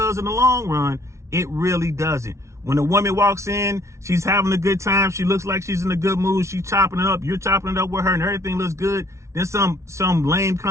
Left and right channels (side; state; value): left; late; 0.14 ms